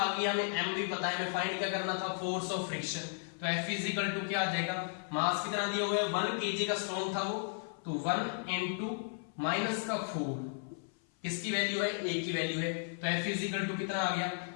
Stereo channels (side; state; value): right; silent; 55 dB below the other